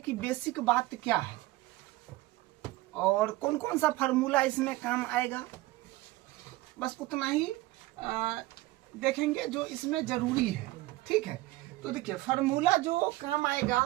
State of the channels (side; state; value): left; quieter; 18.6 dB